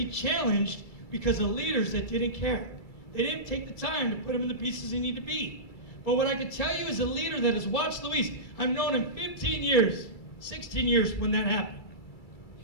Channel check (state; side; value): late; right; 2.3 ms